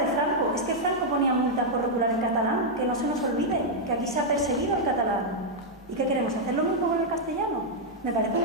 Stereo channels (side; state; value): both; normal; correlation -0.04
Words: Franco. Es que Franco ponía multas por regular en catalán, que no se nos olvide, que aquí se ha perseguido el catalán. ¿Y qué queremos? ¿Hacer lo mismo con el castellano? Me parece